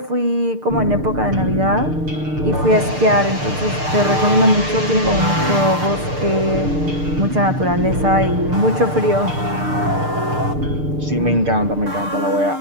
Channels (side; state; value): left; late; 6.7 ms